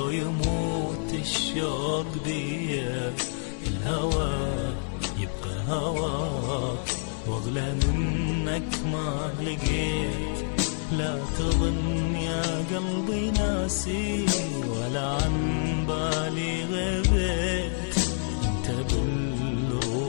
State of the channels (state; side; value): silent; right; 60 dB below the other